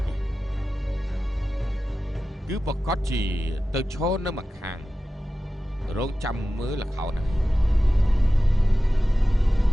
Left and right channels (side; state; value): both; normal; correlation 0.94